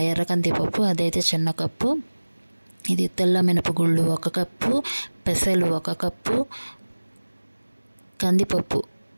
ఎర్రకంది పప్పు అదైతే చిన్న కప్పు, ఇది తెల్ల మినపగుళ్ళు 1 కప్పు, పెసలు 1 కప్పు, కందిపప్పు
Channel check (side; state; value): both; inverted; correlation -1.00